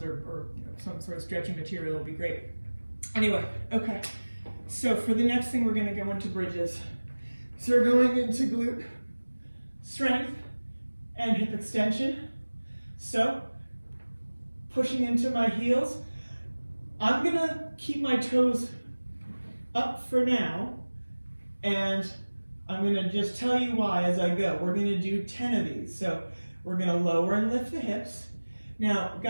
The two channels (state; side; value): inverted; both; correlation -1.00